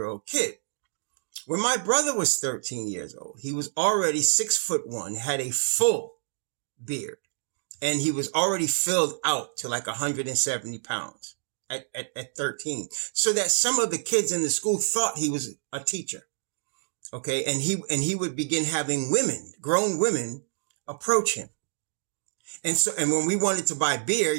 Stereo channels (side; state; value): left; silent; digital silence